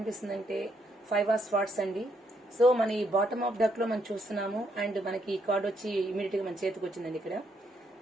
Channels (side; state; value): both; normal; correlation 0.75